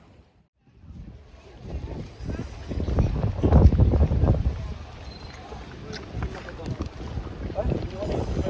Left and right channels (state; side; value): identical; both; correlation 1.00